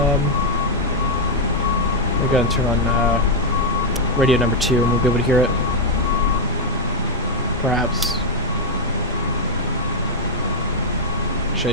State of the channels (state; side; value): normal; both; correlation -0.01